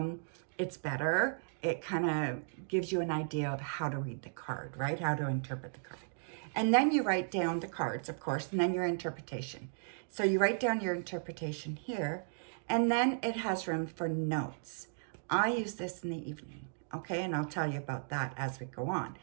It's better. It kind of gives you an idea of how to read the card, right? How to interpret the card. And then you write down the cards, of course, and then your interpretation. So you write down your interpretation here, and then it has room for notes. I use this in the evening, okay? And I'll tell you about that as we go on,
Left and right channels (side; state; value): left; silent; digital silence